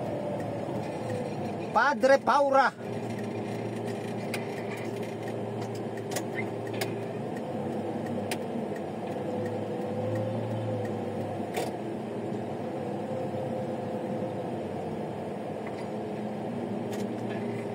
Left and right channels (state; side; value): identical; both; correlation 1.00